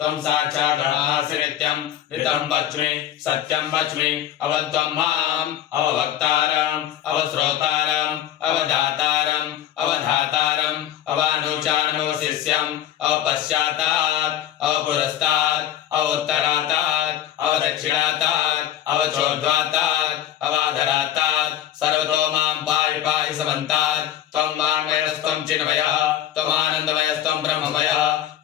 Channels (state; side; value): quieter; right; 11.5 dB